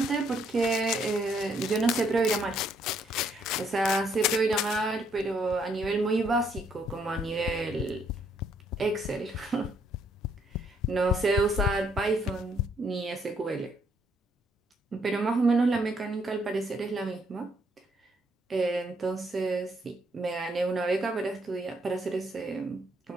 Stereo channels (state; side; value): normal; both; correlation 0.70